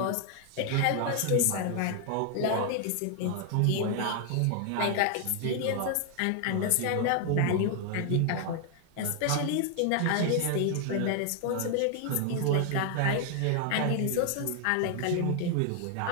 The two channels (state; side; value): different; both; correlation 0.00